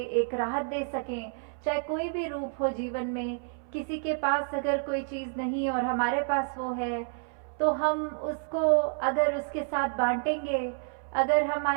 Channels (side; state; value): left; silent; 58 dB below the other